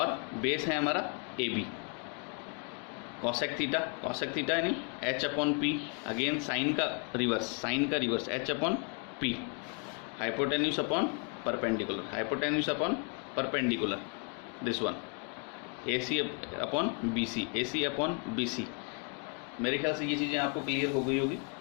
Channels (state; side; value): quieter; right; 37.0 dB